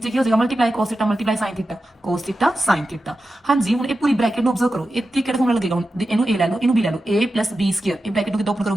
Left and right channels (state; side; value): normal; both; correlation 0.92